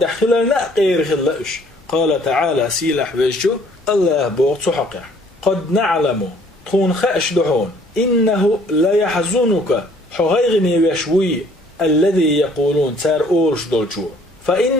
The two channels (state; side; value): normal; both; correlation 0.59